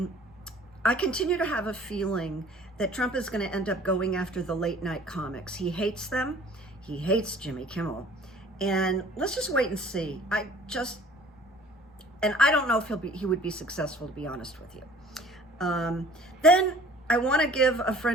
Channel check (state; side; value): normal; both; correlation 0.51